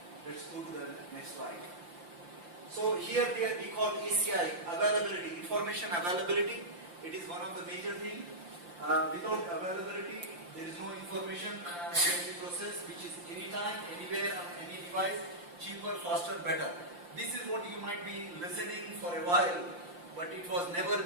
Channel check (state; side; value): late; left; 5.7 ms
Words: Let's go to the next slide. So here we call ACI, availability, information availability. It is one of the major things. Without availability, there is no information can be processed, which is anytime, anywhere, on any device, cheaper, faster, better. This is what you might be listening for a while, but it was never